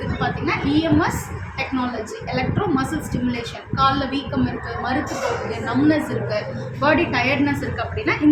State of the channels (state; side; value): identical; both; correlation 1.00